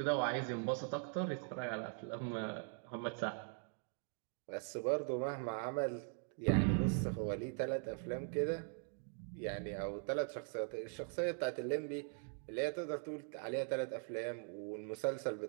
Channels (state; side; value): silent; left; 50 dB below the other